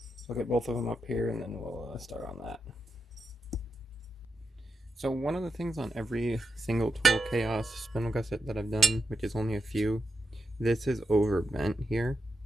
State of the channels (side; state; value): both; normal; correlation 0.87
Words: So I'll get both of them up here and then we'll start on that. So one of the things on every single Tool Chaos spindle gusset that I've done, which is only a few, this is overbent here.